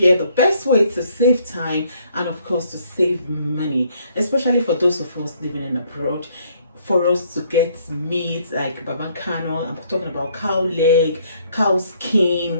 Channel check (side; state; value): both; inverted; correlation -0.66